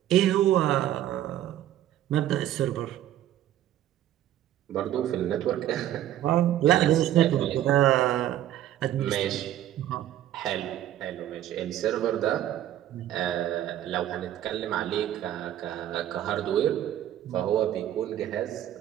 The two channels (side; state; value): left; quieter; 12.2 dB